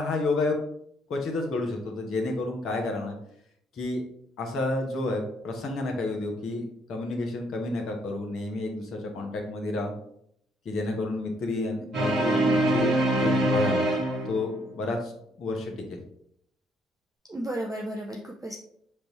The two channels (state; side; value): normal; both; correlation 0.69